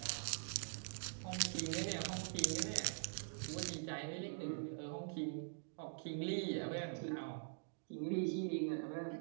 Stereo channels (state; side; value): silent; left; digital silence